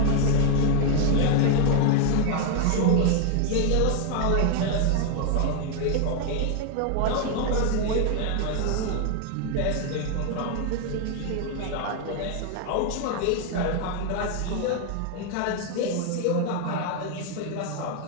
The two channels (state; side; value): different; both; correlation 0.01